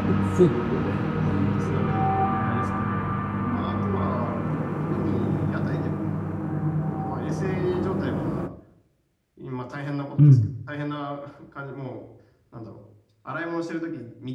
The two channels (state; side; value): identical; both; correlation 1.00